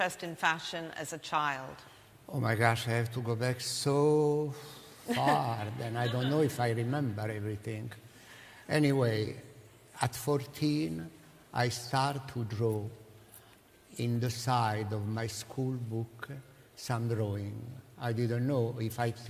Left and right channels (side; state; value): both; identical; correlation 1.00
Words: in fashion as a child. Oh my gosh, I have to go back so far, then I don't know if I remember everything. Anyway, at 14, I started to draw in the side of my school book some drawing. I didn't know. If I